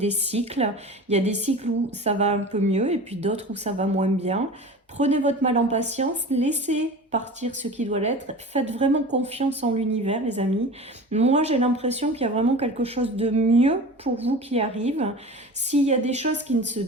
cycles. Il y a des cycles où ça va un peu mieux et puis d'autres où ça va moins bien. Prenez votre mal en patience, laissez partir ce qui doit l'être. Faites vraiment confiance en l'univers, les amis. Moi, j'ai l'impression qu'il y a vraiment quelque chose de mieux pour vous qui arrive. S'il y a des choses qui ne se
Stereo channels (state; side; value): normal; both; correlation 0.35